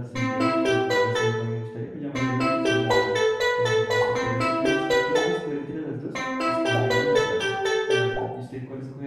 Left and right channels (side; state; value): both; identical; correlation 1.00